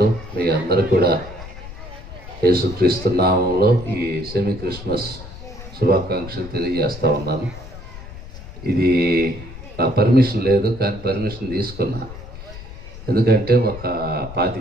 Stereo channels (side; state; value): left; noise; rumble, 14 dB below the sound